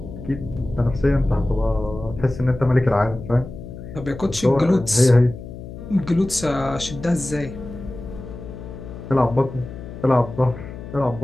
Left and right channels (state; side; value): noise; left; hum, 12 dB below the sound